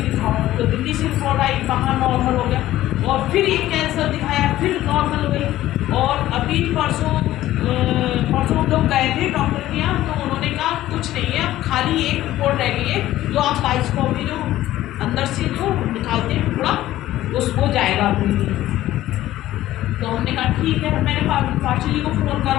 तो दिल्ली से रिपोर्ट आई, वहाँ नॉर्मल हो गया और फिर ये कैंसर दिखाया, फिर नॉर्मल हो गई। और अभी परसों हम लोग गए थे डॉक्टर के यहाँ, तो उन्होंने कहा कुछ नहीं है, अब खाली एक रिपोर्ट रह गई है जो आप बाइस्कोपी जो अंदर से जो निकालते हैं पूरा उस हो जाएगा अभी। तो हमने कहा ठीक है। मैंने पास्टर जी को फ़ोन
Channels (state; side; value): quieter; right; 14.6 dB